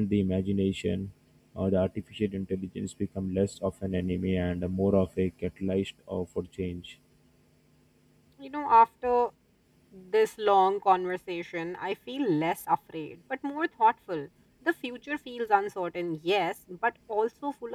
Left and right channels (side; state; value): both; identical; correlation 1.00